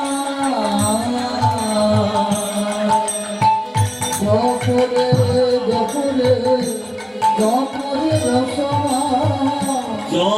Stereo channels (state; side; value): identical; both; correlation 1.00